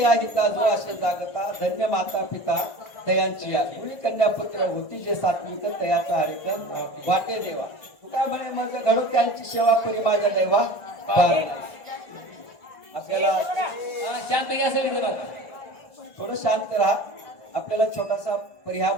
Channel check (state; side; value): late; right; 1.6 ms